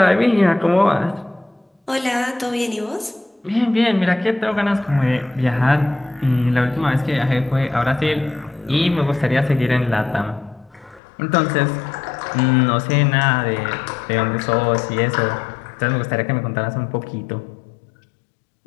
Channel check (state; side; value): drops out; right; at 11.0 s